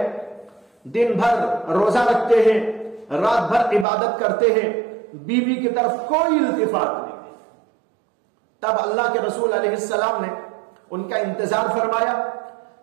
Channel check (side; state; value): left; drops out; at 3.9 s